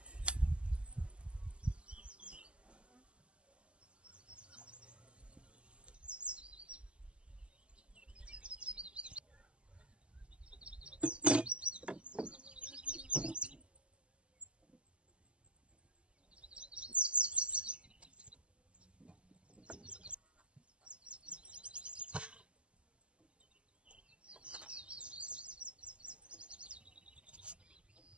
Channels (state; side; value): late; left; 0.055 ms